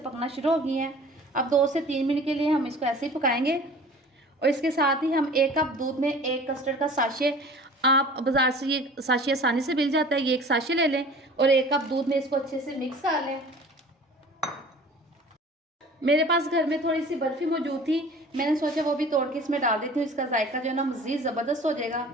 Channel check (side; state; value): both; normal; correlation 0.44